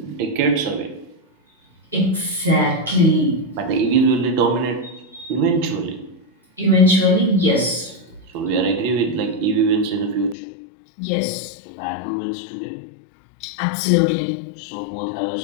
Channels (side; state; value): right; drops out; at 10.4 s